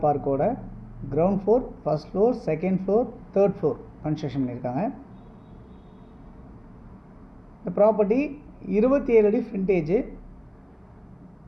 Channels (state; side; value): identical; both; correlation 1.00